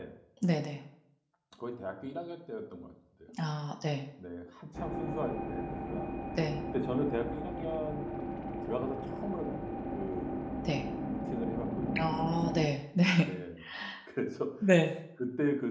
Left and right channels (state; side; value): identical; both; correlation 1.00